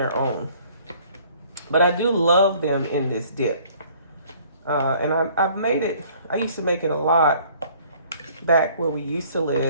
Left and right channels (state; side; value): inverted; both; correlation -0.57